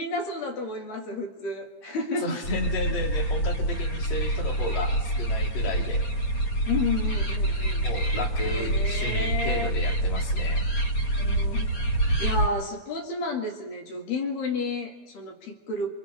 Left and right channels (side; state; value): right; late; 8.6 ms